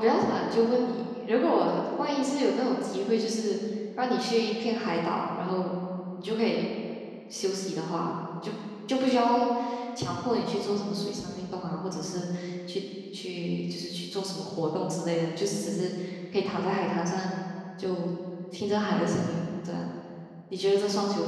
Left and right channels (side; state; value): both; identical; correlation 1.00